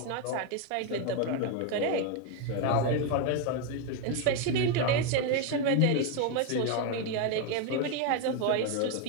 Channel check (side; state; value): both; different; correlation 0.01